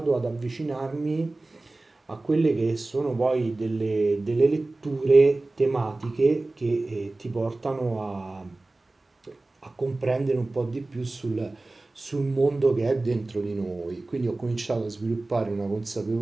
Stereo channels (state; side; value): quieter; left; 3.0 dB